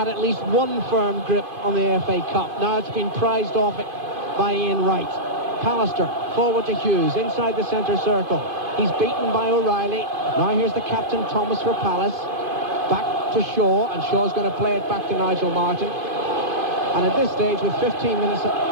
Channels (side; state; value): left; late; 2.5 ms